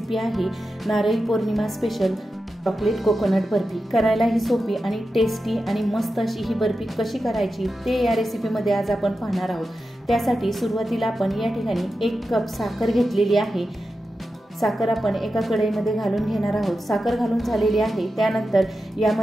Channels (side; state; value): both; normal; correlation 0.91